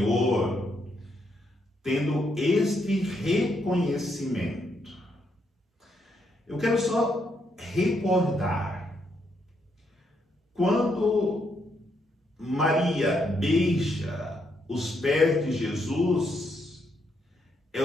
tendo este reconhecimento. Eu quero só recordar, quando Maria beija os pés de Jesus, é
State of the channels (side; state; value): both; normal; correlation 0.77